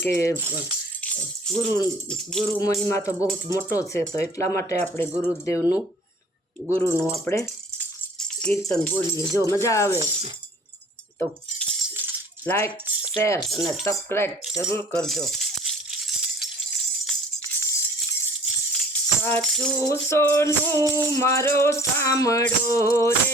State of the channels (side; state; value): both; normal; correlation 0.51